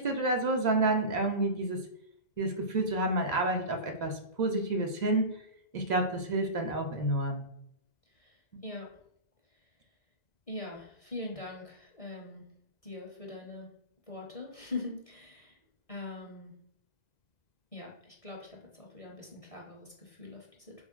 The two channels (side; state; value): right; late; 2.0 ms